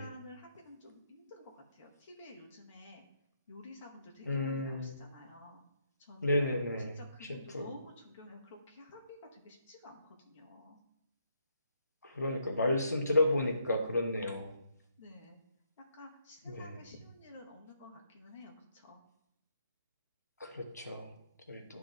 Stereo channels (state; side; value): inverted; both; correlation -0.74